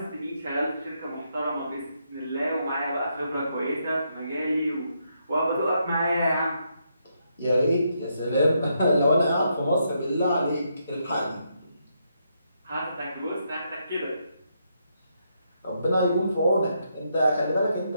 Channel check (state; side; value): inverted; both; correlation -0.78